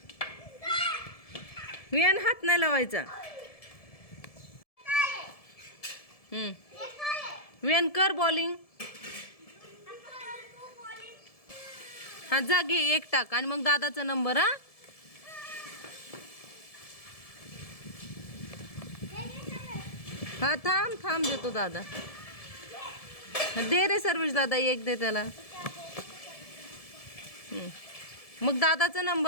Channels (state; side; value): late; right; 1.7 ms